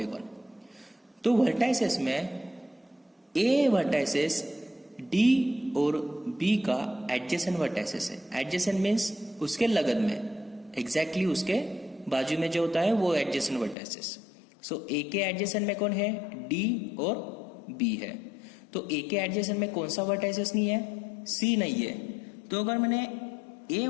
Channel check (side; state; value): right; drops out; at 13.8 s